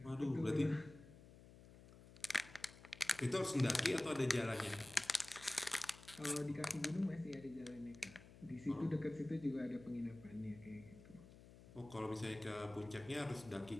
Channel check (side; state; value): left; noise; hum, 19 dB below the sound